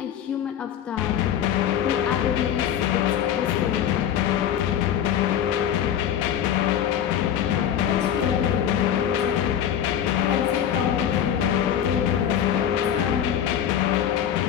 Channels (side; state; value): right; quieter; 9.7 dB